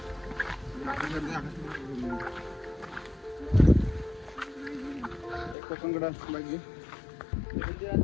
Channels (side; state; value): right; drops out; at 5.6 s